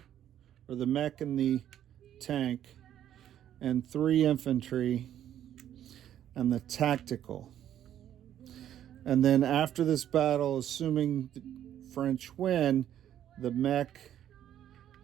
or the mech and the tank, and 3 infantry, and the tactical. And then after this battle, assuming the French win, the mech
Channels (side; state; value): left; quieter; 10.9 dB